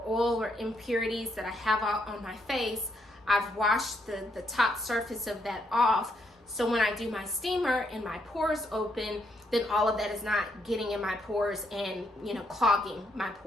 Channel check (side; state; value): both; normal; correlation 0.75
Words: oil or impurities that I have out on my face, I've washed the top surface of that off. So when I do my steamer and my pores open, then all of that is not getting in my pores and clogging my